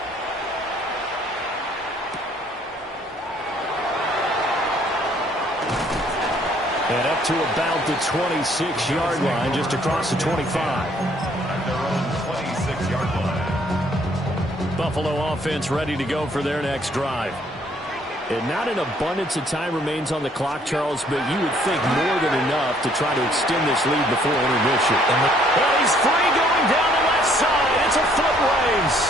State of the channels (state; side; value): normal; both; correlation 0.63